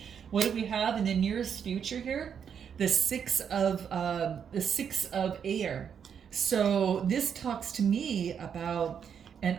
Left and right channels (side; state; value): left; quieter; 7.6 dB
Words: What do we have in the nearest future here? The six of air. So this talks to me about an